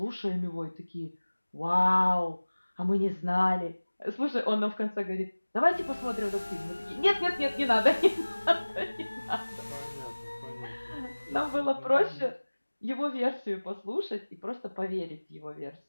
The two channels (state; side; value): inverted; both; correlation -1.00